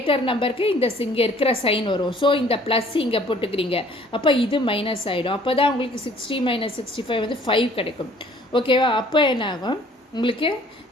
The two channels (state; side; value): normal; both; correlation 0.56